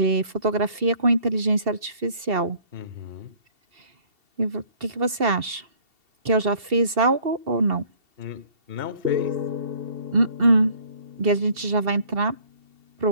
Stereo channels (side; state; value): left; late; 2.7 ms